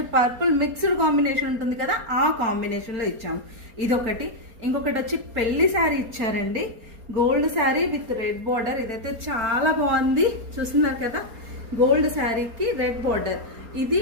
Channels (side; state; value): left; late; 4.3 ms